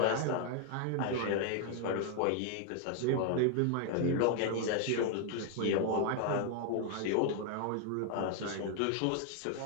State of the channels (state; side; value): different; both; correlation 0.00